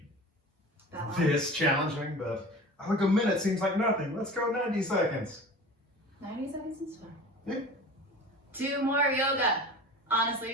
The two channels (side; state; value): both; normal; correlation 0.37